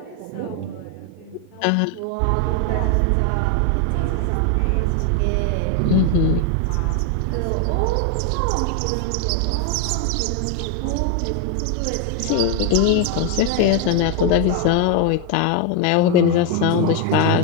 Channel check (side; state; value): both; different; correlation 0.01